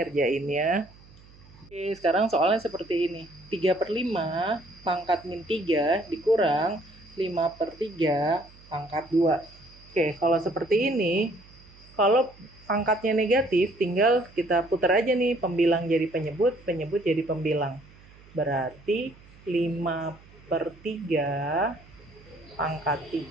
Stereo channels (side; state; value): right; noise; hum, 24 dB below the sound